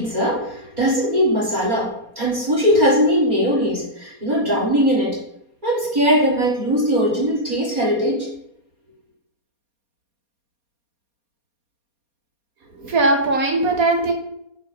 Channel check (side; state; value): left; late; 4.2 ms